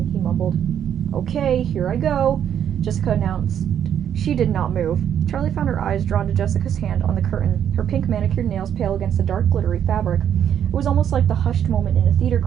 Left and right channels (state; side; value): quieter; left; 9.3 dB